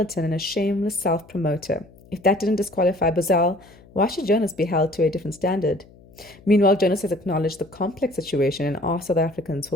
and a shameless self-promoter. If that didn't disqualify Bozell, why should Jonas be held to a different standard? Meanwhile, Jonas has acknowledged the complex situation and asked South Africans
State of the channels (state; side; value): noise; left; hum, 25 dB below the sound